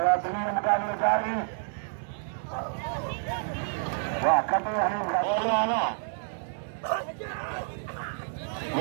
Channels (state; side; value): silent; left; digital silence